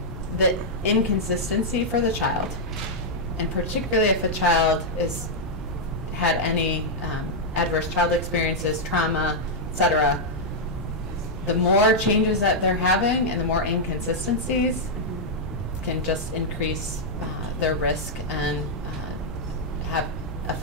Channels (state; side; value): normal; both; correlation -0.04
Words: the inconsistency for the child, and particularly if a child had any adverse child experiences, trauma, etc., the more changes that they're having and the more inconsistencies can just increase their risk and have